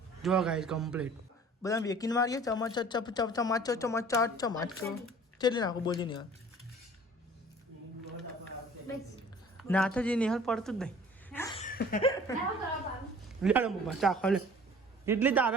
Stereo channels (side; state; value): both; normal; correlation 0.49